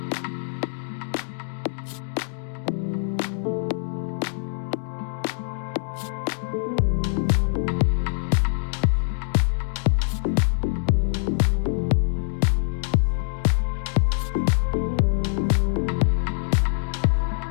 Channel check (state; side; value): silent; right; digital silence